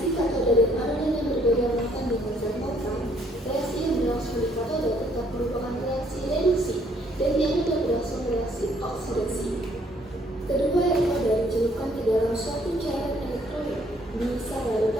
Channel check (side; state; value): both; normal; correlation 0.65